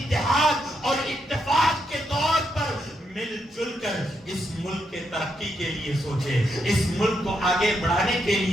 اور اتفاق کے طور پر مل جل کر اس ملک کے ترقی کے لیے سوچے، اس ملک کو آگے بڑھانے کے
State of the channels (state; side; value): normal; both; correlation 0.80